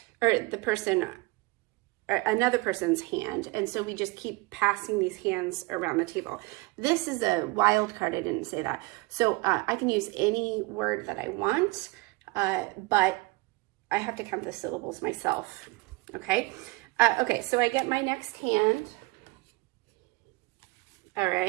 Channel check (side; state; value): left; quieter; 24.0 dB